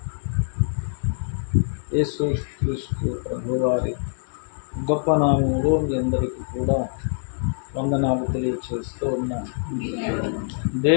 యేసుక్రీస్తు ప్రభువారి గొప్ప నామములో మీ అందరికీ కూడా వందనాలు తెలియచేస్తూ ఉన్నాను.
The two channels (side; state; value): right; silent; digital silence